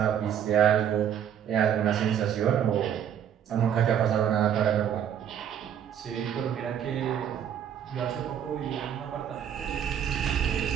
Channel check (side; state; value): left; quieter; 9.2 dB